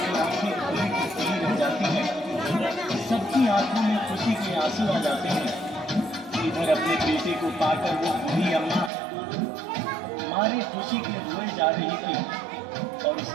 की आंखें खुली की खुली रह जाती हैं। सबकी आंखों में खुशी के आंसू आ जाते हैं। इधर अपने बेटे को पाकर वो बूढ़ी अम्मा मारे खुशी के रोए जा रही थी और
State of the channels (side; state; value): left; drops out; at 8.9 s